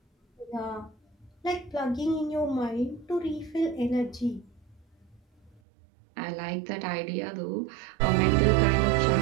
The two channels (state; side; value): drops out; left; at 5.6 s